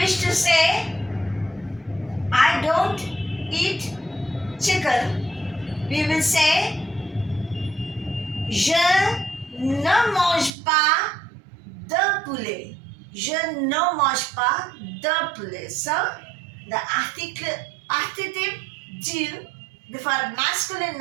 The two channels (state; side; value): drops out; left; at 10.5 s